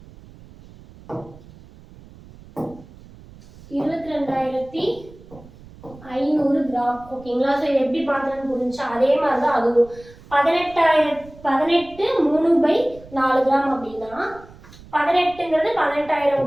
கிராம். ஓகேங்களா? ஸோ இது எப்படி பார்த்தோன்னு புரிஞ்சா? அதே மாதிரி தான் அதுவும் 18 3/4 கிராம் அப்படின்னா 18ங்கிறது 18,000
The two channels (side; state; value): right; noise; rumble, 21 dB below the sound